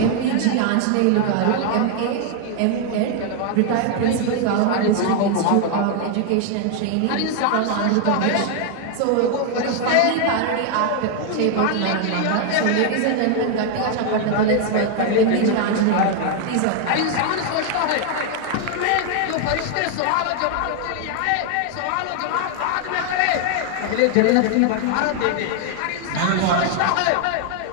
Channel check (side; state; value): both; different; correlation 0.00